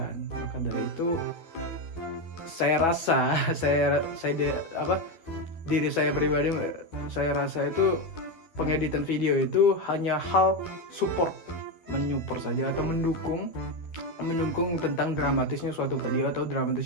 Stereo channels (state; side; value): late; right; 12 ms